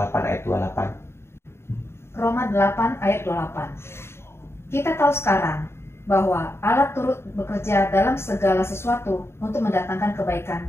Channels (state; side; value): late; right; 0.12 ms